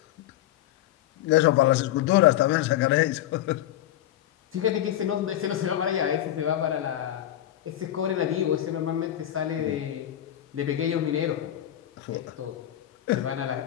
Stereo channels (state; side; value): quieter; right; 12.6 dB